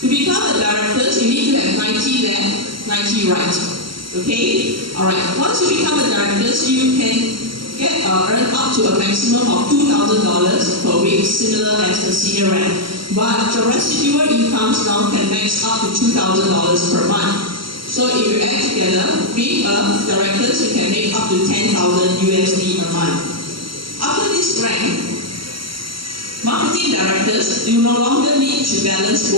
become a director, you need to have 90 left, 90 right. Okay? Alright, once you become a director, you can earn up to a maximum of $2,000 per week, similar as the senior rank. But the residual incomes now can max up to $2,000 per month. So if you add together, being a director, you can make up to $10,000 USD a month. After this rank, marketing directors, you no longer need to balance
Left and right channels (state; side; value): late; left; 0.74 ms